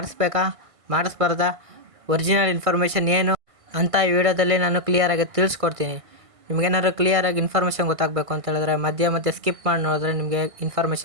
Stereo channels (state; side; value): late; left; 1.5 ms